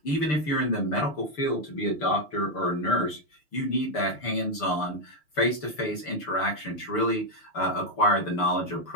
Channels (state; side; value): late; right; 6.7 ms